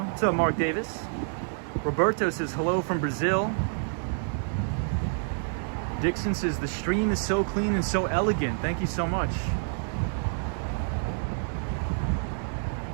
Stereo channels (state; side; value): silent; left; digital silence